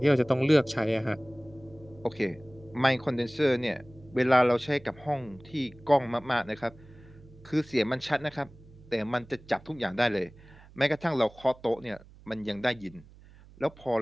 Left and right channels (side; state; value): right; noise; hum, 23 dB below the sound